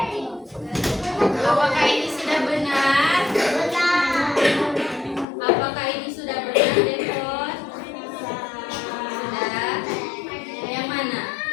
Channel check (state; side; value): drops out; right; at 5.2 s